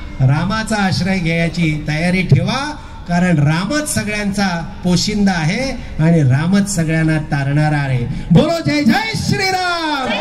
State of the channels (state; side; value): identical; both; correlation 1.00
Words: रामाचा आश्रय घ्यायची तयारी ठेवा. कारण रामच सगळ्यांचा पोशिंदा आहे आणि रामच सगळ्यांना तारणारा आहे. बोलो जय जय श्रीराम.